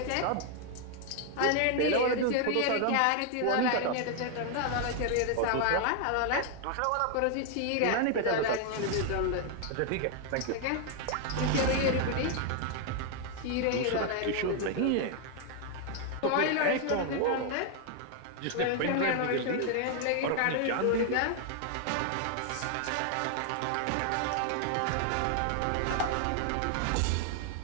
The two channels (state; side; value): different; both; correlation 0.00